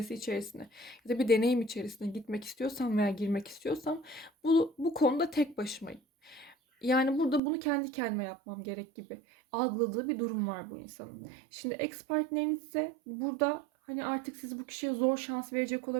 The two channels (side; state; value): left; drops out; at 7.4 s